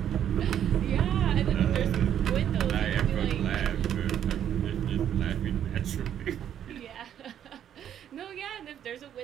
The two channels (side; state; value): left; quieter; 9.9 dB